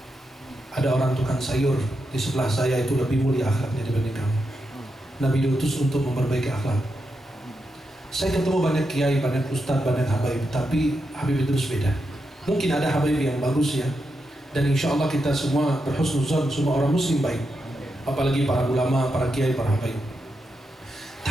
Ada orang tukang sayur di sebelah saya itu lebih mulia akhlaknya dibanding kamu. Nabi diutus untuk memperbaiki akhlak. Saya ketemu banyak kiai, banyak ustadz, banyak habaib, tapi Habib Idrus beda. Mungkin ada habaib yang bagus ya, dan insya Allah kita semua berhusnuzon, semua orang muslim baik, apalagi para ulama, para kiai, para habaib.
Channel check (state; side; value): normal; both; correlation 0.86